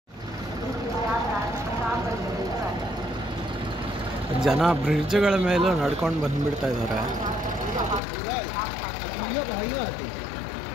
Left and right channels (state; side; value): drops out; right; at 8.0 s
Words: ಜನ ಬ್ರಿಡ್ಜ್ಗಳ ಮೇಲೂ ನಡ್ಕೊಂಡು ಬಂದ್ಬಿಡ್ತಾ ಇದ್ದಾರೆ.